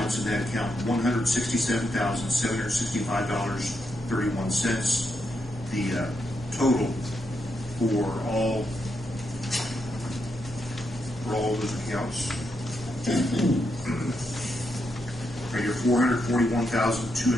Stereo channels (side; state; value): both; normal; correlation 0.82